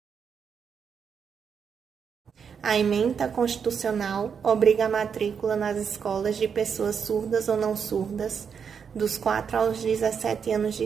A ementa constitucional obriga a matrícula nas escolas de pessoas surdas ou não surdas, dos 4 aos 17 anos de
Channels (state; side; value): quieter; left; 6.8 dB